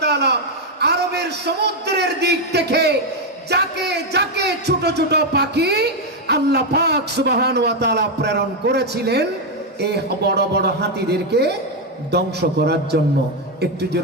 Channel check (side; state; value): both; normal; correlation 0.04